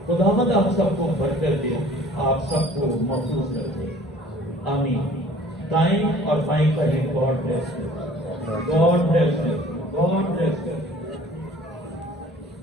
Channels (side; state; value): both; normal; correlation 0.50